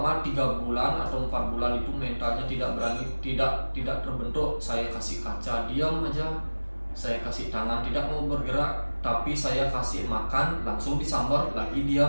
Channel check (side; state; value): both; inverted; correlation -1.00